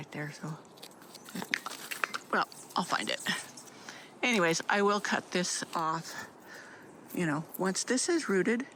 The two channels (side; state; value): both; identical; correlation 1.00